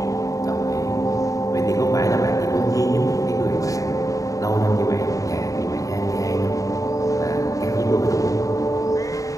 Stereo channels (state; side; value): late; right; 0.16 ms